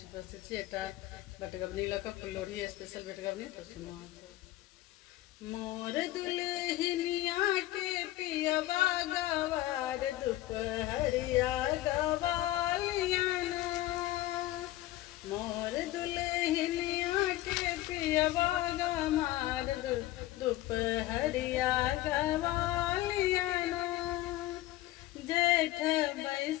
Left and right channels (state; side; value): quieter; right; 15.9 dB